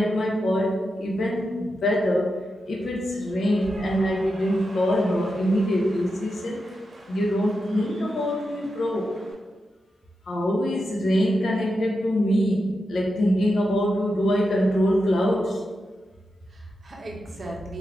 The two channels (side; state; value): both; normal; correlation 0.88